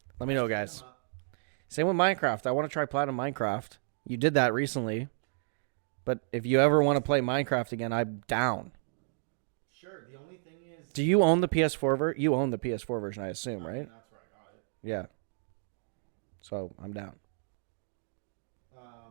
Let me know, Hit them up. Same with Minecraft. I want to try Platinum Minecraft. You did that recently. But if you ever want to easy. play Minecraft again, I'm down. Sure. The only thing is, Do you own the PS4 version? You own the PS4 version, I assume. I mean, right? that's where I got it. Yeah. So I'm down.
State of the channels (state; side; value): silent; left; digital silence